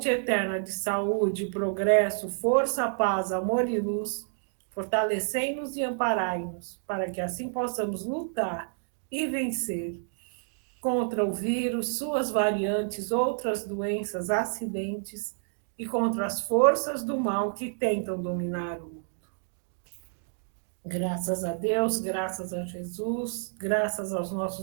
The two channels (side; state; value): left; silent; digital silence